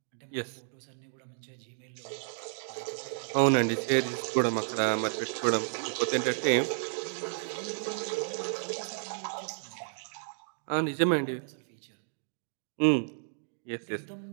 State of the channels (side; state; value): left; silent; digital silence